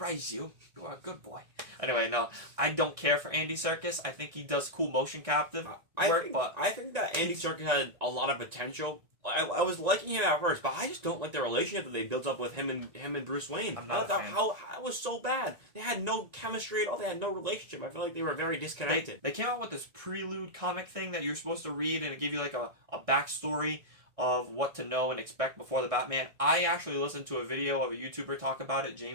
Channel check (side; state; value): left; late; 1.6 ms